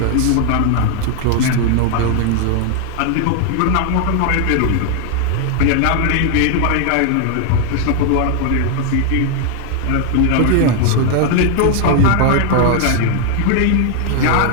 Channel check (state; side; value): different; both; correlation 0.00